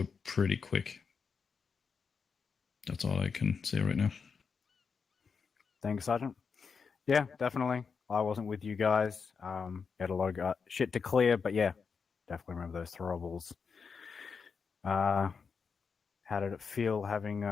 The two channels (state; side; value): quieter; right; 5.6 dB